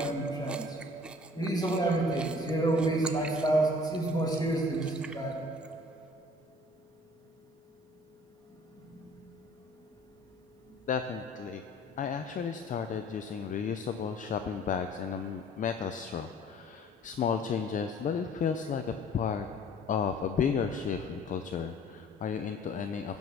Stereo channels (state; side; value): normal; both; correlation 0.51